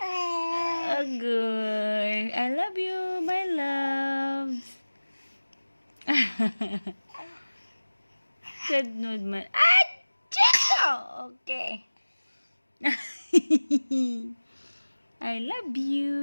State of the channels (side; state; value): both; inverted; correlation -1.00